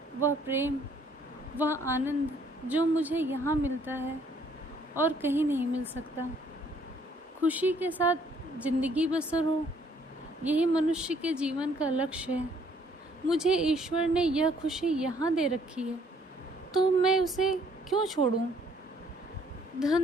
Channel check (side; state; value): both; normal; correlation 0.64